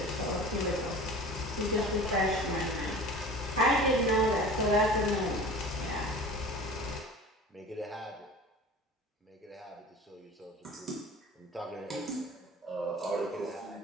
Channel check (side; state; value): both; normal; correlation 0.39